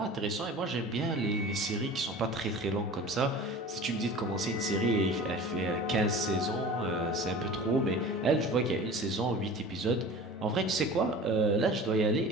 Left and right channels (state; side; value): normal; both; correlation 0.39